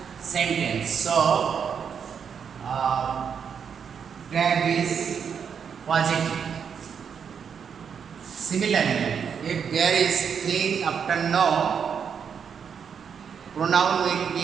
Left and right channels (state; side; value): quieter; left; 7.1 dB